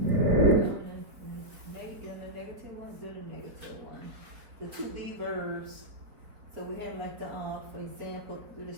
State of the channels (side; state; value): left; late; 4.8 ms